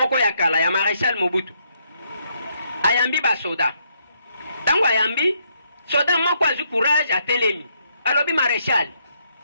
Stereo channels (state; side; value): inverted; both; correlation -0.74